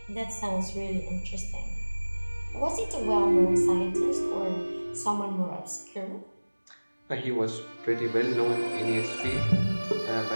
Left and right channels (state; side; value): inverted; both; correlation -1.00